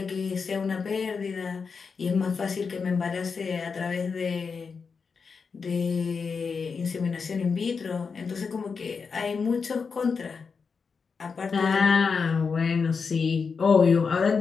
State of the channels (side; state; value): right; quieter; 5.3 dB